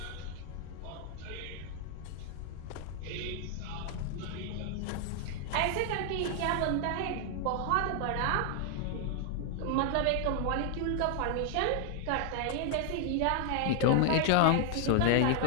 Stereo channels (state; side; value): different; both; correlation 0.00